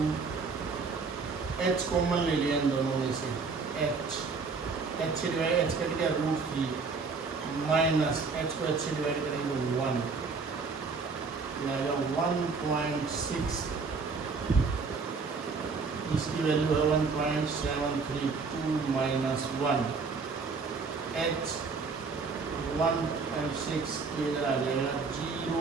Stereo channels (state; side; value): quieter; left; 4.6 dB